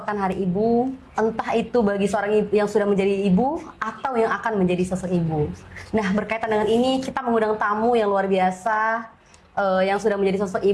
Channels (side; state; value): both; identical; correlation 1.00